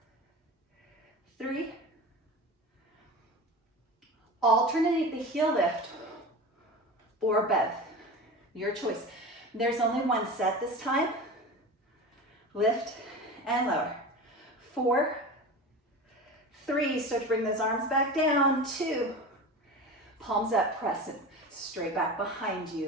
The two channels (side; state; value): both; normal; correlation 0.31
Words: 3. Alternate the heel lift or both. Your choice. There's only one set this time. Lift and lower. 4, 3, start to bring those arms back down. 2, palms up, press it straight back behind you,